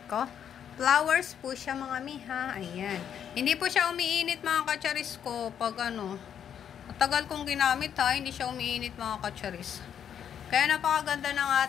ko. Flowers po siya mga miha. Ayan. Hindi po siya umiinit mga kacharis ko pag ano. Matagal kong ginamit ha. Hindi siya umiinit mga kacharis. Kaya napakaganda ng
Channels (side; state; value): right; quieter; 8.8 dB